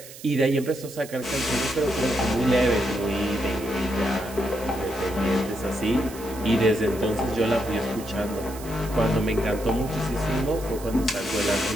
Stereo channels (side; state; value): right; noise; hiss, 16 dB below the sound